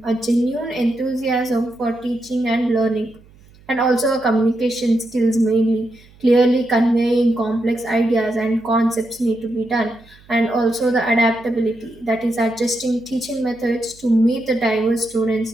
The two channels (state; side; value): noise; right; hum, 26 dB below the sound